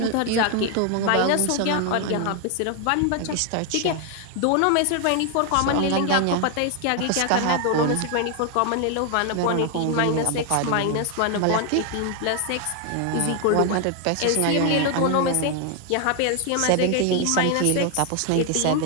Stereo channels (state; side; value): different; both; correlation 0.01